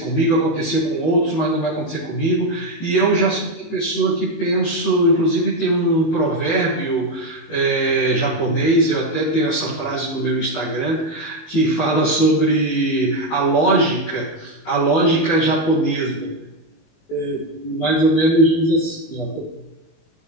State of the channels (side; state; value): right; late; 19 ms